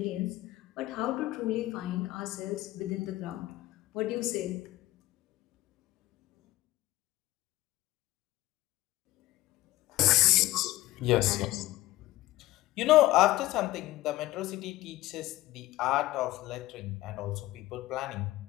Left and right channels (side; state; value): right; quieter; 16.9 dB